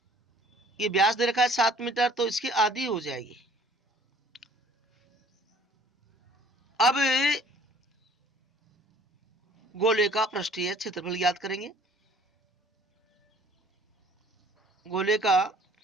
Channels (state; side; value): normal; both; correlation 0.54